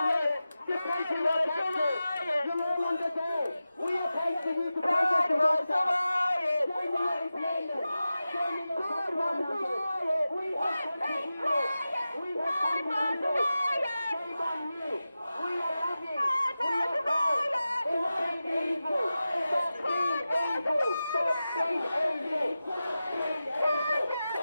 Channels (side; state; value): both; inverted; correlation -0.94